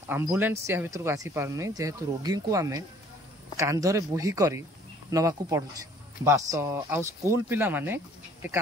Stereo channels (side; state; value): both; normal; correlation 0.56